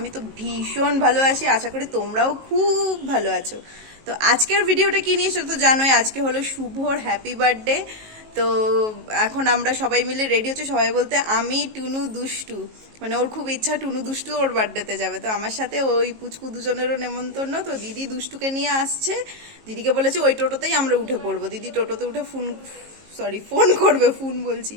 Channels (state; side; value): late; left; 19 ms